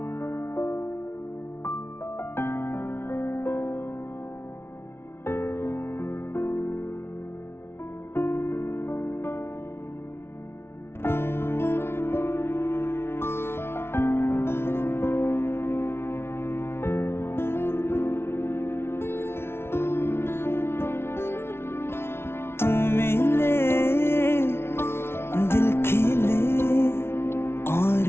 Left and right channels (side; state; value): right; late; 0.12 ms